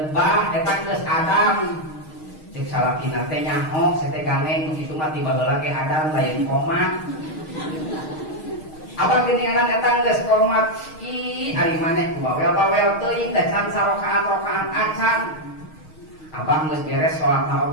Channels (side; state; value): right; late; 6.4 ms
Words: bah eta geus Adam. Ceuk salakina teh nyaho sete ganeng kitu mah tiba heula ge Adam lain koma. Abang geuningan eta geus komat ari maneh bawel-bawel teuing da can sarokaan acan. Abang geus beres salatna